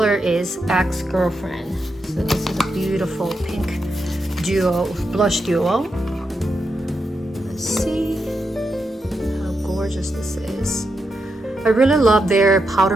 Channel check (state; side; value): normal; both; correlation 0.85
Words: is Ex-Girlfriend. So this is a beautiful pink blush duo. Let's see how gorgeous this is. I really love their powder